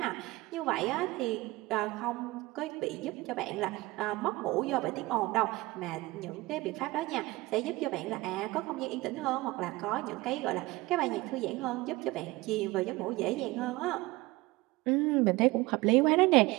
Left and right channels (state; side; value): quieter; left; 21.0 dB